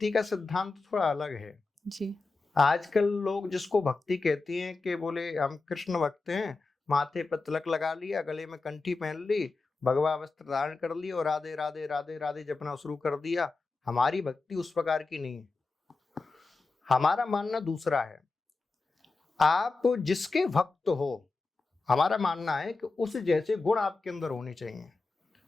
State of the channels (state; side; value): quieter; right; 3.8 dB